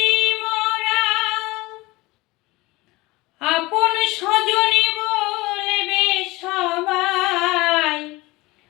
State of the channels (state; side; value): quieter; right; 21.5 dB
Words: মরা। আপন স্বজনে বলবে সবাই,